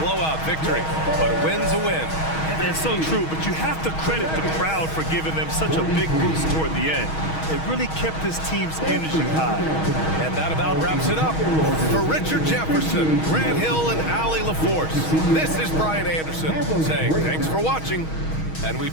victory, but a win's a win. That's so true, but you have to credit the crowd for giving them such a big boost toward the end. It really kept this team's energy high. And that about wraps it up. For Richard Jefferson, Grant Hill, and Allie LaForce, this is Brian Anderson saying thanks for watching. And we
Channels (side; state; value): right; late; 6.3 ms